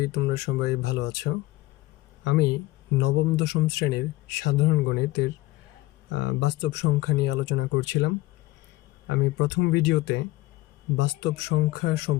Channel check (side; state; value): right; quieter; 19.0 dB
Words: তোমরা সবাই ভালো আছো। আমি নবম-দশম শ্রেণীর সাধারণ গণিতের বাস্তব সংখ্যা নিয়ে আলোচনা করছিলাম। আমি প্রথম ভিডিওতে বাস্তব সংখ্যা